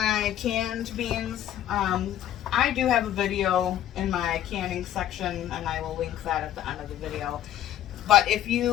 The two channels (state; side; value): quieter; right; 11.7 dB